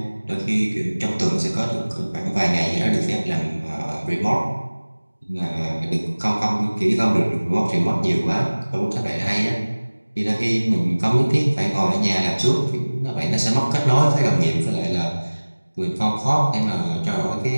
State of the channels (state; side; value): inverted; both; correlation -1.00